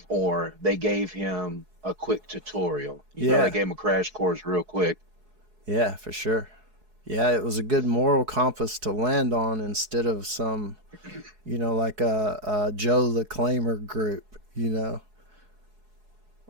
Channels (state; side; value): late; left; 4.7 ms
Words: or they gave him a quick tutorial. You know, they gave him a crash course real quick. Yeah, for sure. Yeah, it was a good moral compass to land on instead of some, like a Joe the Claimer group,